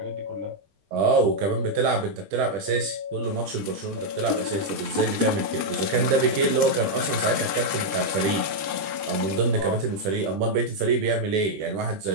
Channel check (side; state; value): left; late; 20 ms